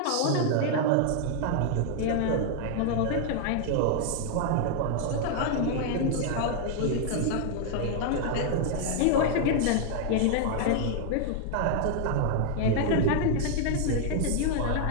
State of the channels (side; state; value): both; different; correlation 0.00